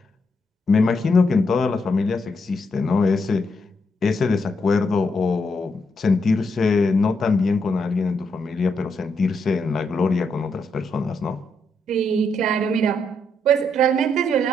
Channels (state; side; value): normal; both; correlation 0.79